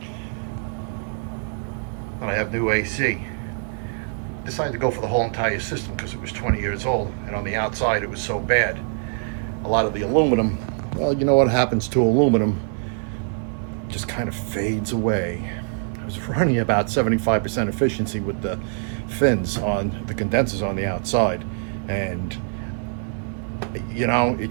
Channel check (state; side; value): silent; left; 63 dB below the other